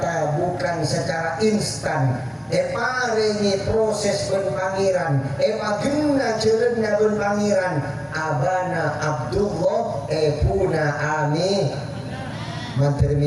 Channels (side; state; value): both; identical; correlation 1.00